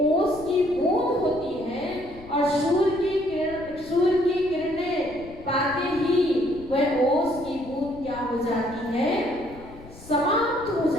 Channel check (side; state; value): left; noise; rumble, 19 dB below the sound